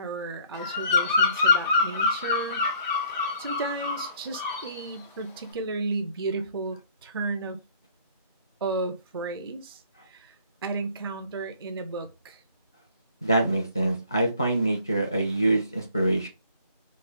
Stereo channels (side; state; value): both; inverted; correlation -0.60